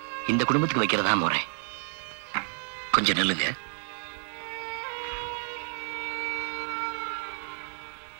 இந்த குடும்பத்துக்கு வைக்கிறதா முறை. கொஞ்சம் நில்லுங்க.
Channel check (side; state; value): left; silent; 58 dB below the other